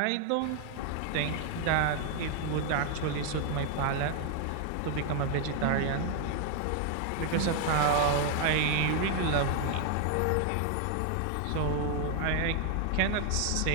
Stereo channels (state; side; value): different; both; correlation 0.00